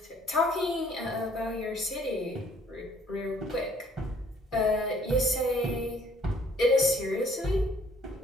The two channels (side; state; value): both; normal; correlation 0.60